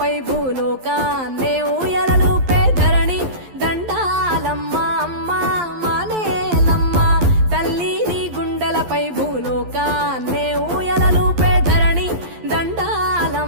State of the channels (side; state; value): left; late; 11 ms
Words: గుండెలపై భూలోకాన్నే ఊయలలుపే ధరణి దండాలమ్మ అమ్మ మానేలమ్మ తల్లి నీ గుండెలపై భూలోకాన్నే ఊయలలుపే ధరణి